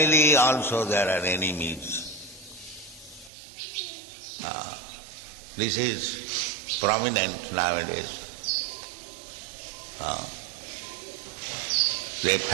also there are enemies. This is prominent nowadays. The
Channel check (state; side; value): drops out; left; at 3.3 s